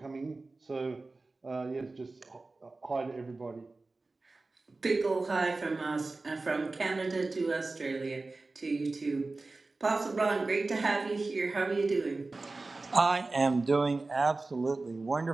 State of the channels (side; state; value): left; quieter; 3.4 dB